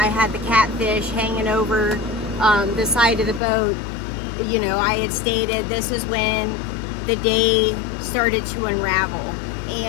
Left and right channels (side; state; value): right; drops out; at 3.4 s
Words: had the catfish hanging over the side of the boat, you know, I had stated this is when the day started to unravel.